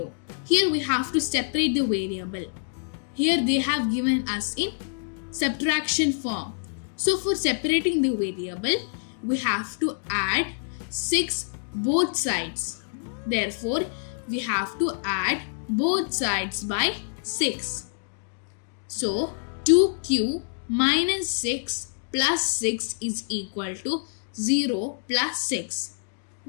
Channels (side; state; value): right; silent; digital silence